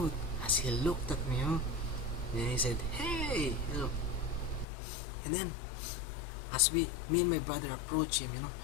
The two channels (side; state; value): right; drops out; at 4.7 s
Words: as he looked at me, and he said, hey, and then as me and my brother approached him,